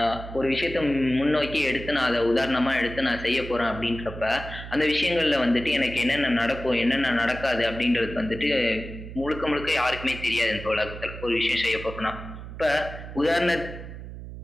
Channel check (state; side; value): noise; right; hum, 11 dB below the sound